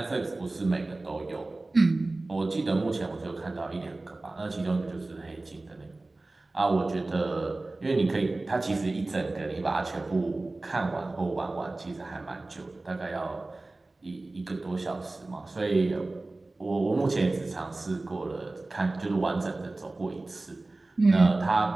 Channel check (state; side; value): quieter; left; 3.0 dB